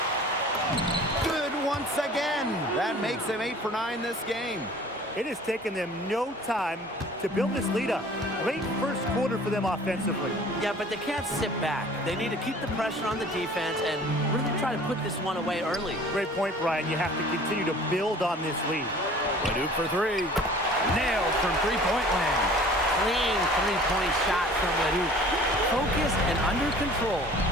Once again, that makes him 8 for 9 this game. It has taken them no time to build this lead up. Great first quarter for them offensively. Yeah, but they can't sit back. They need to keep the pressure on the defense and really try to put this one away early. Great point, Brian. You have to continue to build on this lead. Leduc for three. Nailed from three-point land. Clean three-point shot from Ledoux. Focused and under control.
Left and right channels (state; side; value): normal; both; correlation 0.48